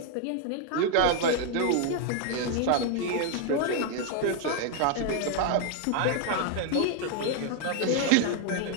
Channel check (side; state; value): both; different; correlation 0.00